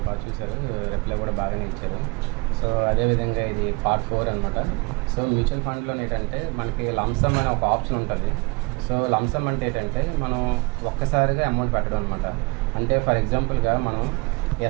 బాగా చూశారు, రిప్లై కూడా బాగానే ఇచ్చారు. సో అదేవిధంగా ఇది పార్ట్ 4 అనమాట. సో మ్యూచువల్ ఫండ్లో ఏంటంటే మనకి లంసమ్ అనే ఒక ఆప్షన్ ఉంటుంది. సో లంసమ్ అంటే ఏంటంటే మనం ఒక్కసారిగా అమౌంట్ పెట్టడం అనమాట. అంటే ఫర్ ఎగ్జాంపుల్గా మనం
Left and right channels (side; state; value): left; quieter; 28.3 dB